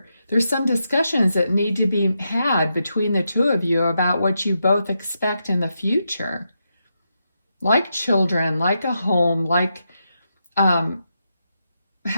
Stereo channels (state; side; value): inverted; both; correlation -0.84